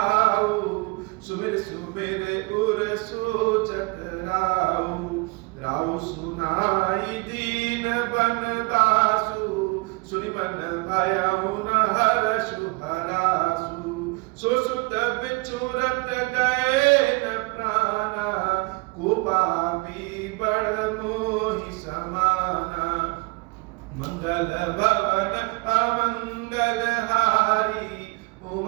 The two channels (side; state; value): left; quieter; 27.3 dB